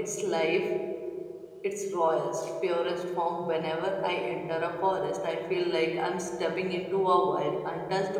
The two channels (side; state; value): both; identical; correlation 1.00